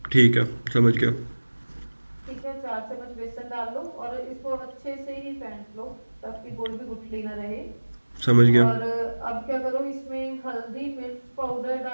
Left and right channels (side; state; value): both; inverted; correlation -1.00